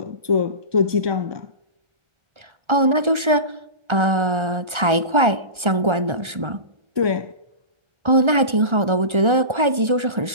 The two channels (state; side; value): late; left; 1.3 ms